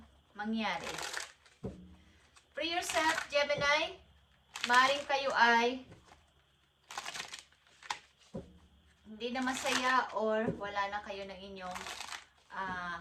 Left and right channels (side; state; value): both; identical; correlation 1.00